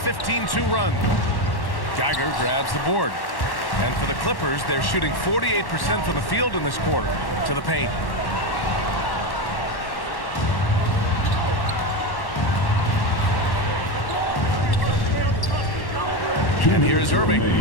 run. Geiger grabs the board. And for the Clippers, they're shooting 48% from the field in this quarter. To the paint. And here's Irving.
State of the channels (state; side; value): late; right; 1.1 ms